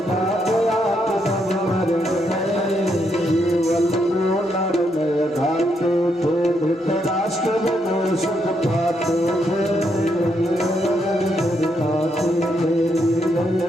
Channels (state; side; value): normal; both; correlation 0.77